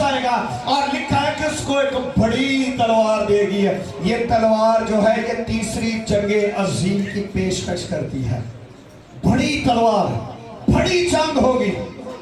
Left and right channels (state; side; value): identical; both; correlation 1.00